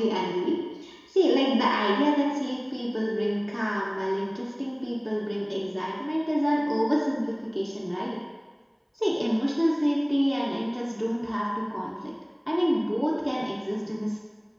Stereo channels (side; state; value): both; identical; correlation 1.00